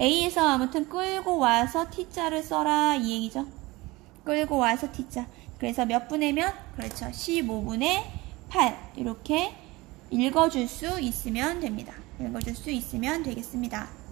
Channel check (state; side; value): quieter; left; 21.6 dB